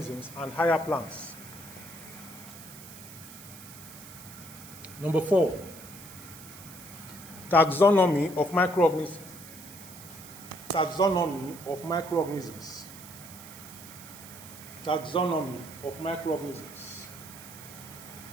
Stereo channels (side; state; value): right; noise; hiss, 16 dB below the sound